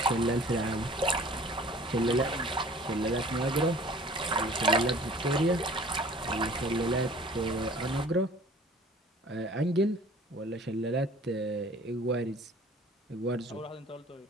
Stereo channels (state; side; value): normal; both; correlation 0.48